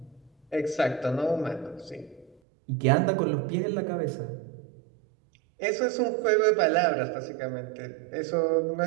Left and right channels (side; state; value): left; drops out; at 2.4 s